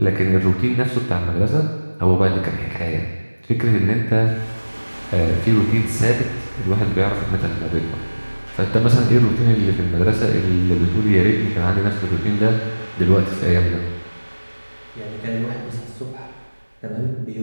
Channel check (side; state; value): both; inverted; correlation -1.00